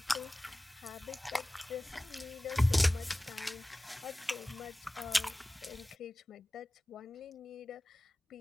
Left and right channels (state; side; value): normal; both; correlation 0.98